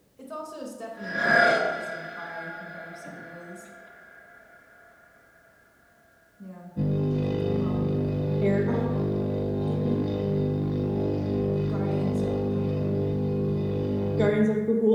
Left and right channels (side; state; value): both; identical; correlation 1.00